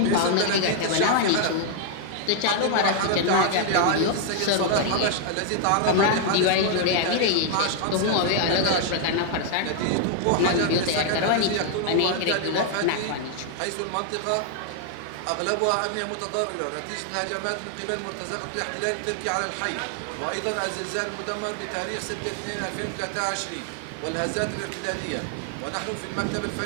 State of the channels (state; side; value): different; both; correlation 0.00